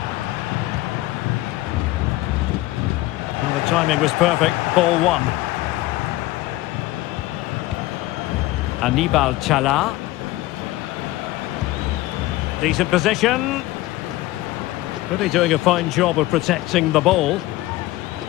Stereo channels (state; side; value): quieter; right; 17.8 dB